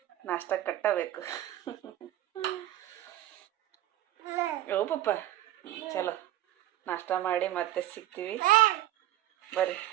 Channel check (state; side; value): quieter; left; 13.8 dB